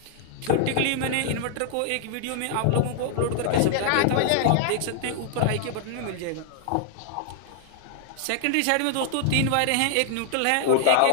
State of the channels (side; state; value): both; different; correlation 0.00